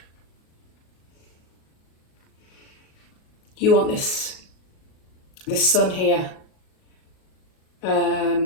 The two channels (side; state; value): right; late; 37 ms